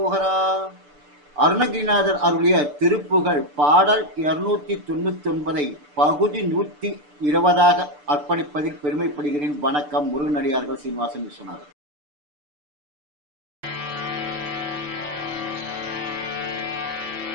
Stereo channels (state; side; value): late; left; 6.8 ms